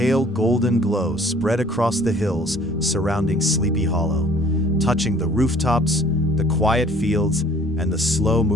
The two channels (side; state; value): both; normal; correlation 0.54